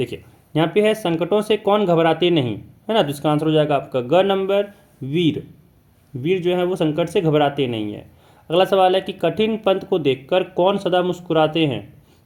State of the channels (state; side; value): identical; both; correlation 1.00